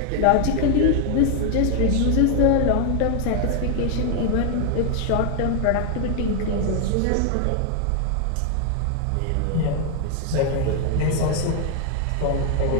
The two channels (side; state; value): both; different; correlation 0.01